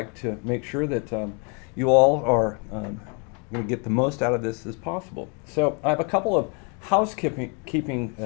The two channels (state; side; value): quieter; right; 36.1 dB